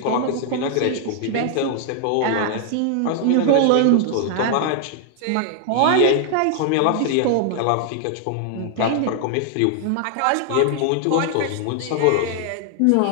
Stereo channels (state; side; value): different; both; correlation 0.00